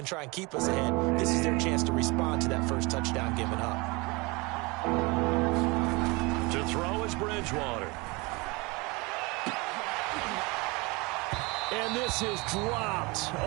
try and keep us ahead. This is their chance to respond to that first touchdown given up. To throw is Bridgewater. And this is dropped.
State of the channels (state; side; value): quieter; left; 26.0 dB